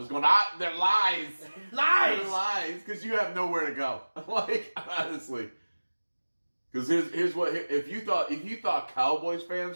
going, they're lies! Lies! They're lies! Because you have nowhere to go. Like, honestly. Because here's what, if you thought Cowboys fans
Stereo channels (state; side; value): inverted; both; correlation -1.00